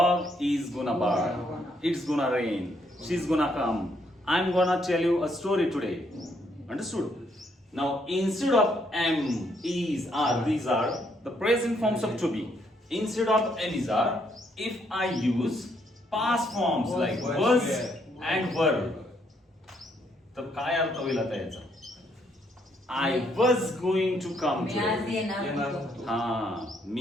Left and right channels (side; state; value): both; normal; correlation 0.72